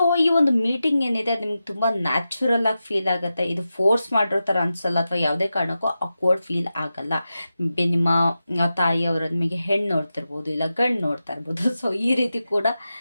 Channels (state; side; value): inverted; both; correlation -0.91